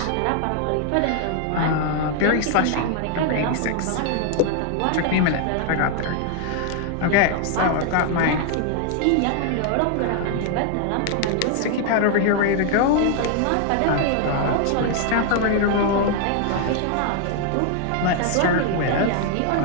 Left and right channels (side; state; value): both; different; correlation 0.00